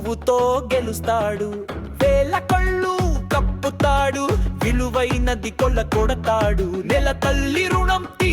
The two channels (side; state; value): both; identical; correlation 1.00